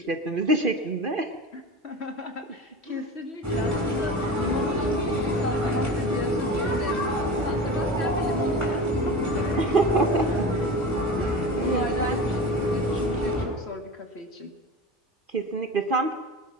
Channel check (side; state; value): both; normal; correlation 0.31